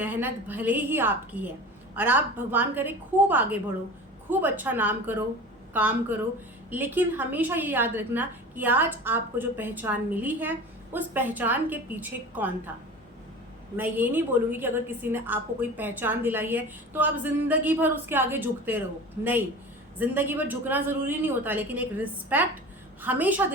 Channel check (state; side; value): normal; both; correlation 0.36